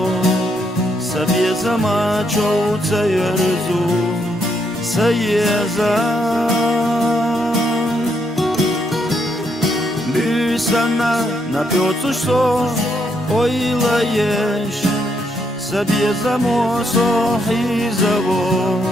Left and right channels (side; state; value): both; normal; correlation 0.76